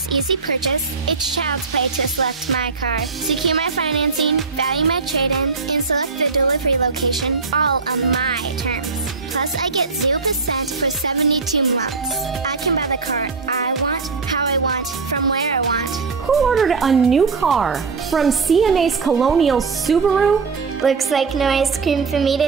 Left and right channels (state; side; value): quieter; left; 4.7 dB